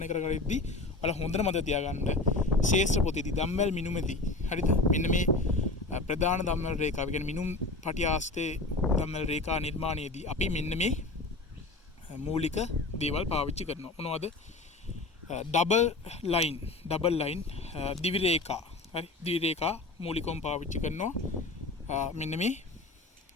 කර ගනිද්දී ඔයාලා හොඳට මතක තියාගන්න ශේෂ්ත්‍ර පොතේදී දම්වැල් මිනුමේදී හරිද? මෙන්න මේ ප්‍රධාන දම්වැල් රේඛාව කියන්නේ මිනුම් පටිය ආශ්‍රිත දම්වැල් රේඛා නිර්මාණයේදී අපි මෙන්න මේ මූලික දේවල් පාවිච්චි කරනවා. මොනවද? ඩබල් ලයින් දිවි රේඛා. හරි. දිවි රේඛා මූලිකවම පාවිච්චි කරනවා. මෙන්න මේ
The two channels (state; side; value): quieter; right; 3.1 dB